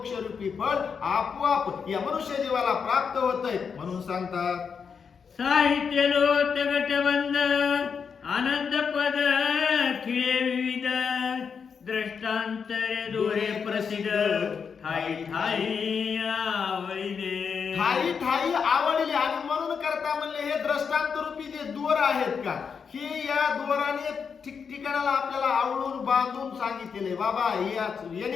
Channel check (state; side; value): quieter; right; 6.2 dB